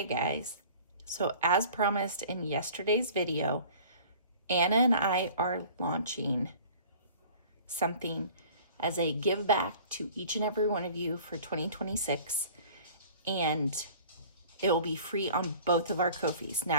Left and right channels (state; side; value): inverted; both; correlation -0.46